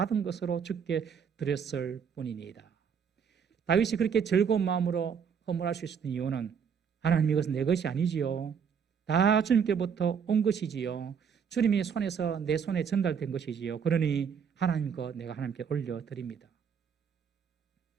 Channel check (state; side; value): quieter; left; 7.0 dB